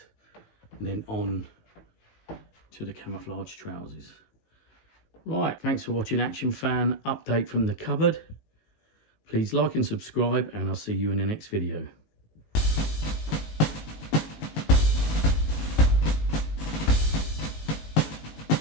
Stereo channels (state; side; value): late; right; 19 ms